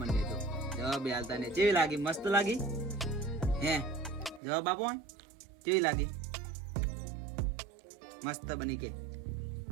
તો જવાબ હાલતા ને. કેવી લાગી? મસ્ત લાગી હે? જવાબ આપો. કેવી લાગી? મસ્ત બની કે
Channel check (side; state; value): left; drops out; at 4.4 s